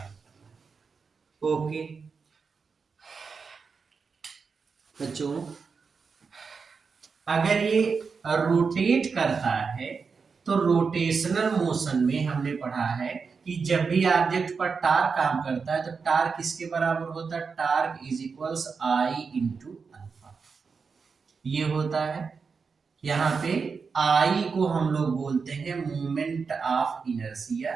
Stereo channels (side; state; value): left; quieter; 5.2 dB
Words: करना है। ओके बच्चों, अगर ये रोटेट करता है तो रोटेशनल मोशन में हमने पढ़ा है कि जब भी ऑब्जेक्ट पर टार्क काम करता है तो टार्क किसके बराबर होता है? Torque is equals I into alpha, ये होता है। यहाँ पे आई को हम लोग बोलते हैं moment of inertia,